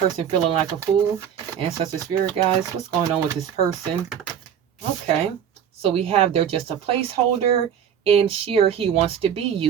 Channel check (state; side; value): quieter; left; 8.7 dB